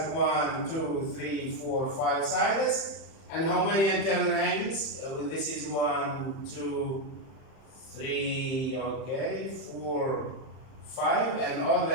1, 2, 3, 4, 5 sides. And how many internal angles? This is 1, 2, 3, okay, 4, 5, and all the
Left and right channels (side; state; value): right; late; 31 ms